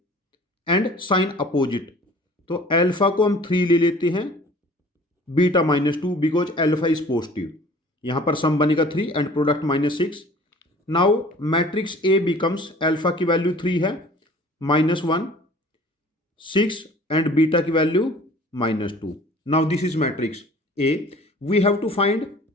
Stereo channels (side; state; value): both; normal; correlation 0.48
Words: and sign opposite. तो अल्फा को हम 3 ले लेते हैं, beta -2 because alpha is positive. यहां पर सम बनेगा 3 and product -6. Now matrix A becomes, alpha की वैल्यू 3 है, -1 6 एंड बीटा की value -2. Now this is matrix A. We have to find